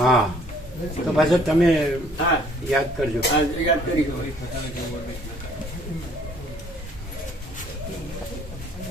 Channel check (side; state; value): both; normal; correlation 0.60